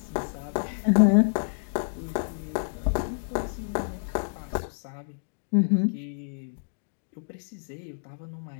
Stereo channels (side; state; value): right; silent; digital silence